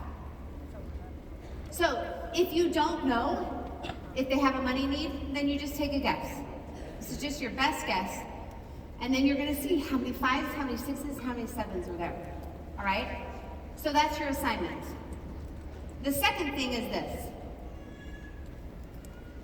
So, if you don't know if they have a money need, then you just take a guess. This is just your best guess. And then you're going to see how many 5s, how many 6s, how many 7s are there. All right? So that's your assignment. The second thing is this.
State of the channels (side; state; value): both; identical; correlation 1.00